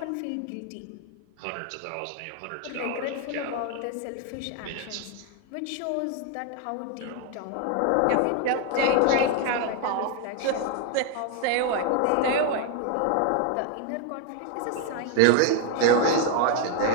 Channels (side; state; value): both; different; correlation 0.01